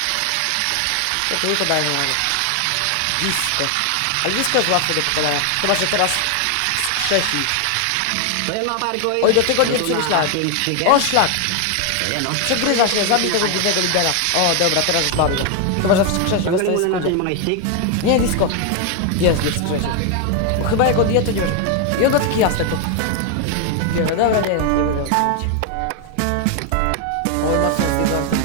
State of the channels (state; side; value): different; both; correlation 0.01